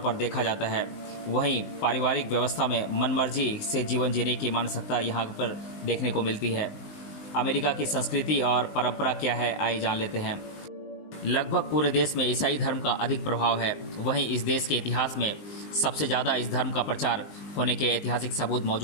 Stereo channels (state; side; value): late; right; 19 ms